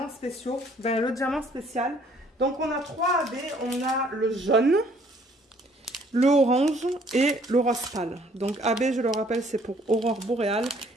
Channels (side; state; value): both; normal; correlation 0.61